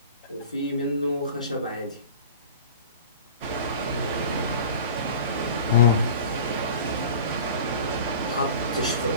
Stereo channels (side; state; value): both; inverted; correlation -0.39